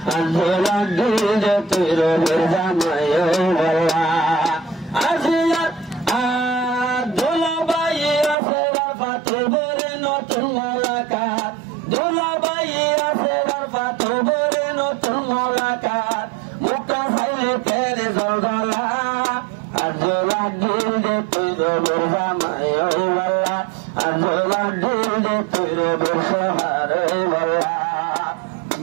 আর জোলা দিল যে তোর মির্জা নাই বল্লা আসিয়া দোলাবাই আছে পাথর বরে নতুন মোলাকাত দোলাবাই আছে পাথর বরে নতুন মোলাকাত মুক্ত সাইলে তেল জলজলা আর জোলা দিল যে তোর মির্জা নাই বল্লা আর জোলা দিল যে তোর মির্জা হারে বল্লা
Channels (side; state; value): left; drops out; at 8.3 s